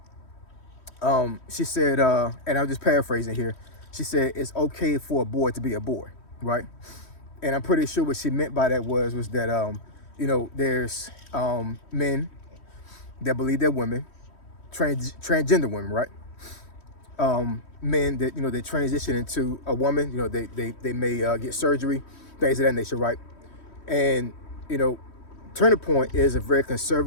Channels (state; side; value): late; right; 3.1 ms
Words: She said, and I'm just paraphrasing here. She said it's okay for a boy to be a boy, right? And I'm pretty sure what she meant by that was that you know, there's men that believe they're women, transgender women, right? Men that, you know, they transition into a woman. You know, they may get surgery, things of that nature, right? And you know, Turning Point is a very